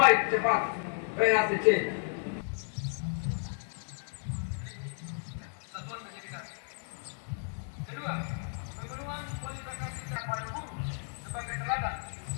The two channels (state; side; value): silent; right; 55 dB below the other